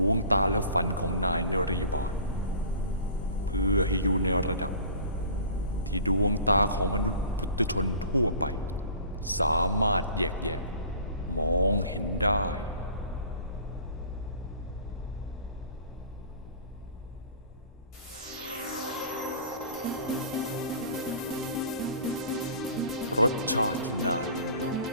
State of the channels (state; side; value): inverted; both; correlation -0.44